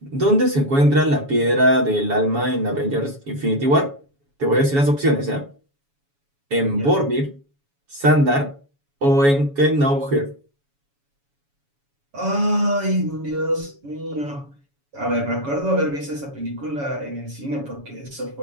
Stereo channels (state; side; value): late; left; 7.1 ms